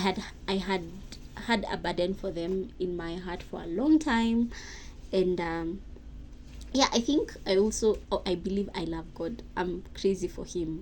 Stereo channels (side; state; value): both; identical; correlation 1.00